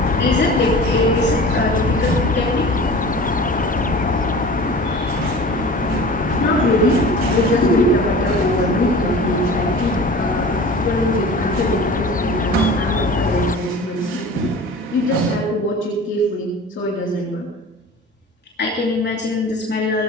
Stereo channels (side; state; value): both; normal; correlation 0.39